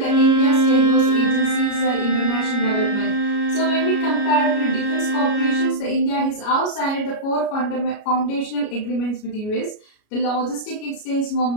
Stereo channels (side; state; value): right; late; 33 ms